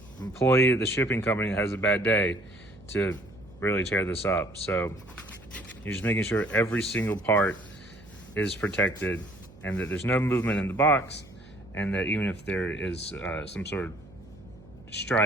employee at the shipping company that has a bad day to really tear this up. So you're just making sure every single part is protected and that there's no movement in the box, and that even if there is some sort of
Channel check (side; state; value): right; noise; hum, 22 dB below the sound